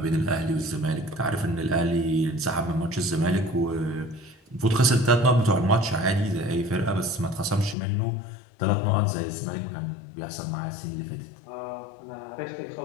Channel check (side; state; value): right; drops out; at 7.8 s